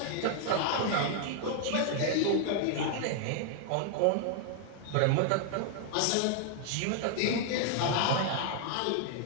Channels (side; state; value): both; different; correlation 0.00